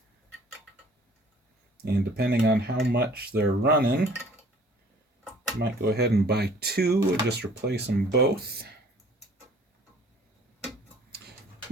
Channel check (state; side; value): normal; both; correlation 0.53